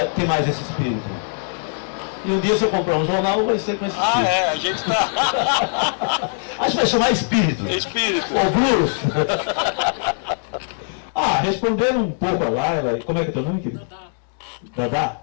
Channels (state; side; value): silent; right; digital silence